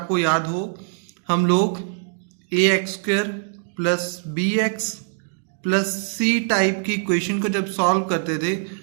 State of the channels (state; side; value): silent; left; 64 dB below the other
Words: याद हो, हम लोग ax² plus bx plus C type की इक्वेशन को जब सॉल्व करते थे